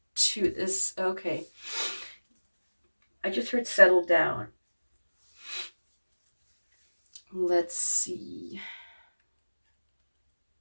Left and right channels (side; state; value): both; inverted; correlation -1.00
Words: to this. Okay. I just heard settle down. Let's see.